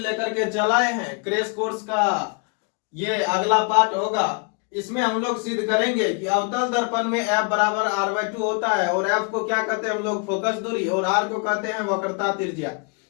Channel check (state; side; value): quieter; right; 35.4 dB